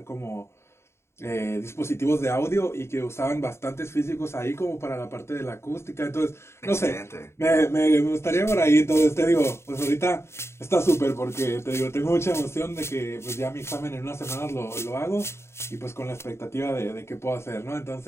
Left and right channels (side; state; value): right; late; 0.13 ms